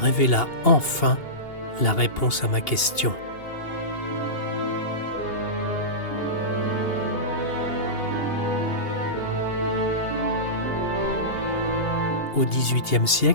enfin la réponse à ma question. Au XVIIIe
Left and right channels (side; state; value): right; late; 2.8 ms